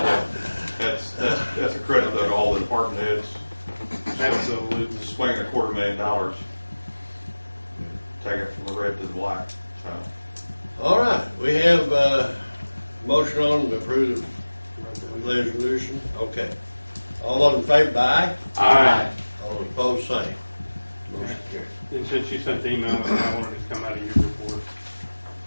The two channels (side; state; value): both; inverted; correlation -1.00